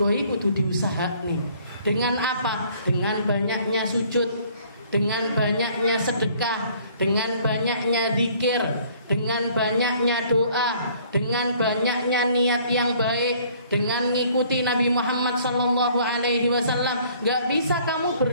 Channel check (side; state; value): both; inverted; correlation -0.58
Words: itu kudu diusahakne. Dengan apa? Dengan banyaknya sujud, dengan banyaknya sedekah, dengan banyaknya zikir, dengan banyaknya doa, dengan banyaknya niat yang baik, dengan ngikuti Nabi Muhammad sallallahu alaihi wasallam. Gak bisa kamu